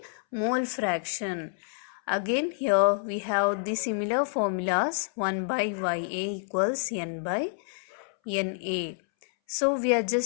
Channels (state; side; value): silent; right; 59 dB below the other